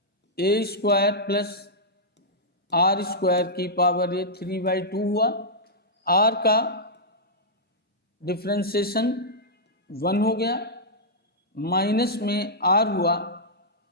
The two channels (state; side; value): normal; both; correlation -0.10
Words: a square plus r square की पावर ये 3/2 हुआ। r का डिफ्रेंसिएशन 1 हो गया, माइनस में r हुआ,